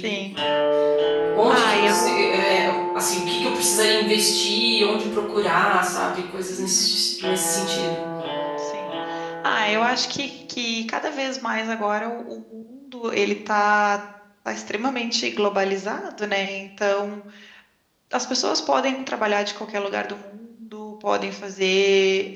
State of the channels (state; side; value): identical; both; correlation 1.00